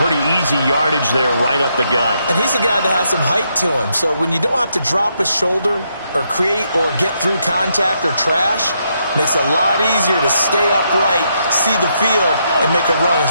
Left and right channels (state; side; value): inverted; both; correlation -0.78